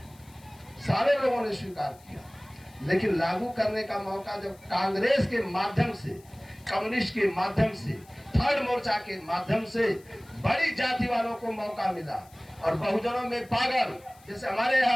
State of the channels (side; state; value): left; noise; hiss, 27 dB below the sound